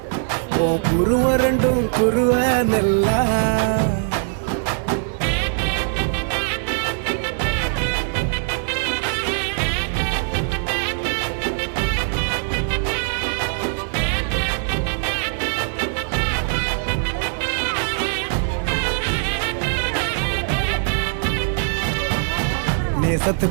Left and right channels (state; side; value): silent; left; digital silence